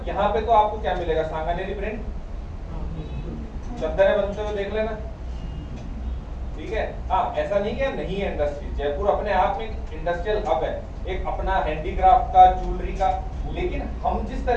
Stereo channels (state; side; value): identical; both; correlation 1.00